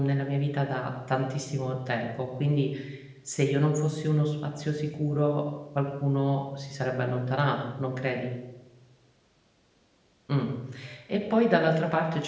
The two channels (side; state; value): both; identical; correlation 1.00